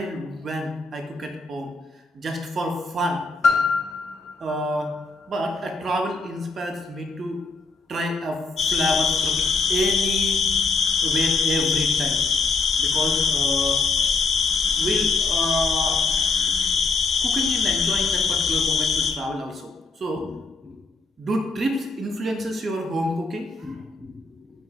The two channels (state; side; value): quieter; right; 3.8 dB